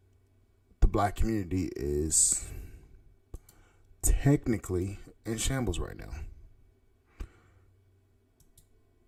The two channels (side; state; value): both; identical; correlation 1.00